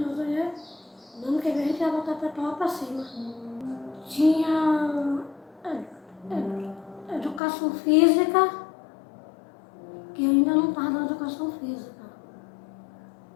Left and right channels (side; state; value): right; drops out; at 7.4 s